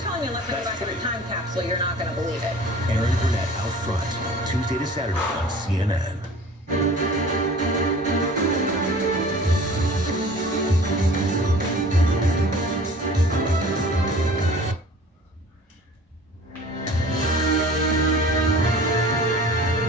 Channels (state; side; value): normal; both; correlation 0.45